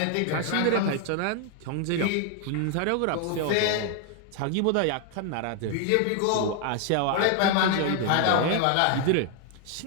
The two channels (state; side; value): different; both; correlation 0.00